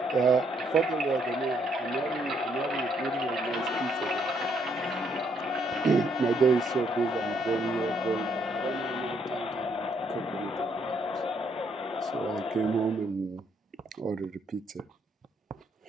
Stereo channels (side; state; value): both; normal; correlation 0.71